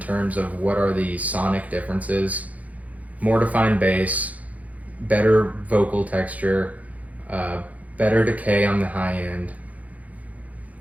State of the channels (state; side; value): late; left; 0.072 ms